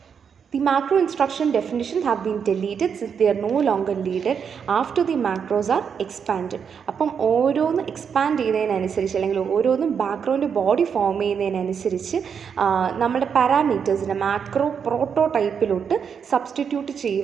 The macro instruction definitions have been deleted since they are no longer needed after the macros are expanded. അപ്പം ഓരോന്ന് എക്സ്പാൻഡ് ചെയ്യുന്നതിനനുസരിച്ച് അല്ലെങ്കിൽ ഓരോന്നും ബാക്ക്ഗ്രൗണ്ട് ബോഡി ഫോം ചെയ്യുന്നതിനനുസരിച്ച് നമ്മുടെ പാരാമീറ്റേഴ്സിനെ മാക്രോ പ്രോട്ടോടൈപ്പിലോട്ട് സബ്സ്റ്റിറ്റ്യൂട്ട്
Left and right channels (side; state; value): left; quieter; 6.9 dB